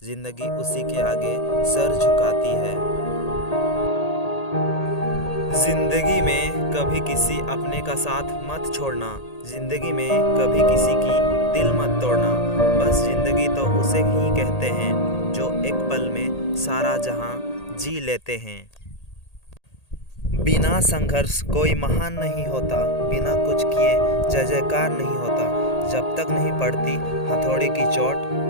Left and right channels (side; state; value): right; late; 1.8 ms